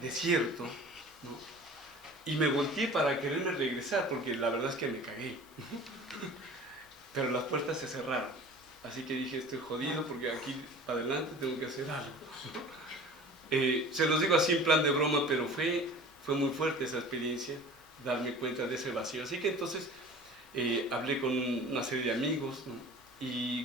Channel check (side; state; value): both; normal; correlation 0.41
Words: desierto, ¿no? Y me volteé para quererme regresar, porque la verdad es que me cagué. Pero las puertas se cerraron. Así que dije, estoy jodido porque aquí adelante tengo que hacer algo. Se los digo así en plan de broma, pero fue muy fuerte esa experiencia, darme cuenta de ese vacío. Así que entonces hablé con una serie de amigos, ¿no? Y